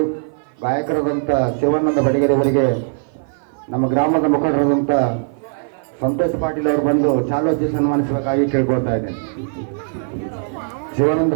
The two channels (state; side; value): silent; left; 55 dB below the other